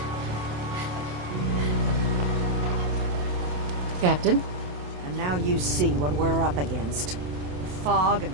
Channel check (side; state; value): left; late; 27 ms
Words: Captain? And now you see what we're up against. The fog and